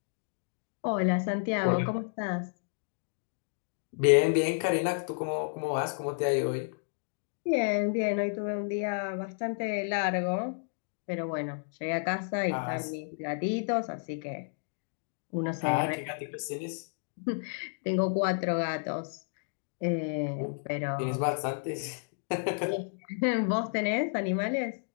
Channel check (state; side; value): silent; right; digital silence